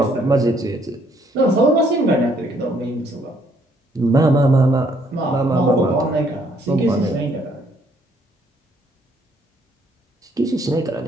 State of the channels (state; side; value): normal; both; correlation 0.67